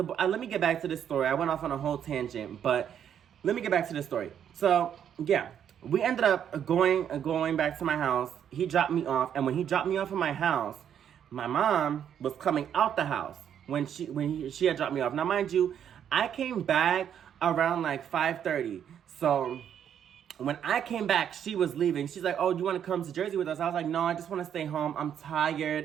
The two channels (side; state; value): left; quieter; 9.1 dB